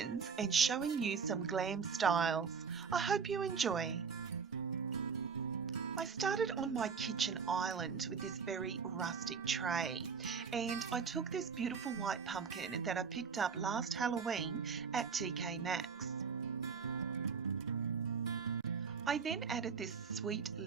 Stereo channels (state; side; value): quieter; left; 5.9 dB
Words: and showing you some glam styles. I hope you enjoy. I started on my kitchen island with this very rustic tray, and I took this beautiful white pumpkin that I picked up last Halloween at TK Maxx. I then added this sweet